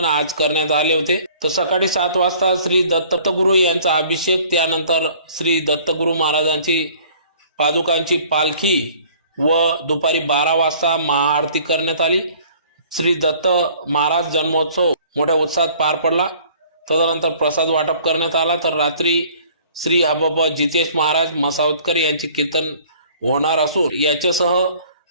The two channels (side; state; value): both; inverted; correlation -0.54